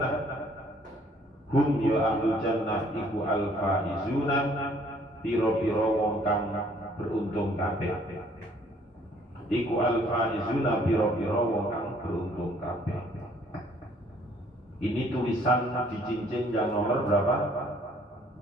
hum ya ahlul jannah iku al faizuna pira-pira wong kang beruntung kabeh. Iku al faizuna pira-pira wong kang beruntung kabeh. Ini tulisan di cincin yang nomor berapa?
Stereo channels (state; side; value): normal; both; correlation 0.61